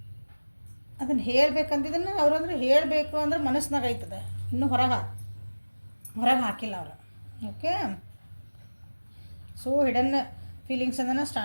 ಅದನ್ನು ಹೇಳಬೇಕಂತಿದ್ದನ್ನು ಅವ್ರು ಅಂದರೆ ಹೇಳಬೇಕು ಅಂದ್ರೆ ಮನಸ್ಸಿನಾಗ ಆಯ್ತದೆ, ಇನ್ನೂ ಹೊರಗೆ ಹಾಕಿಲ್ಲ ಅವರು. ಓಕೆ, ಸೊ ಹಿಡನ್ ಫೀಲಿಂಗ್ಸ್ ಅದನ್ನು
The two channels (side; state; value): both; inverted; correlation -1.00